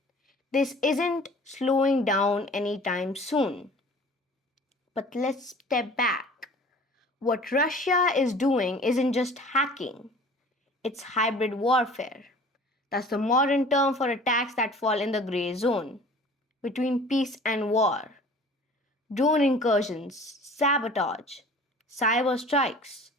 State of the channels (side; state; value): both; normal; correlation 0.47